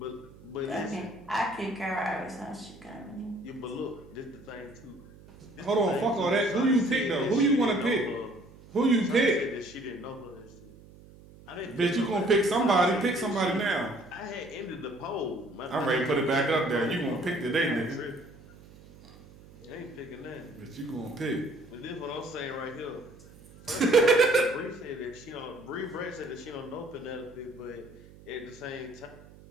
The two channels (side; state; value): right; noise; hum, 21 dB below the sound